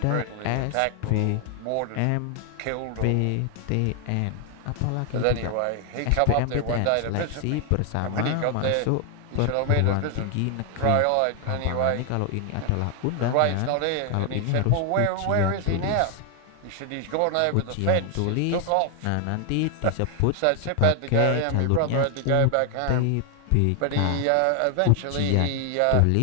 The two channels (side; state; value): both; different; correlation 0.00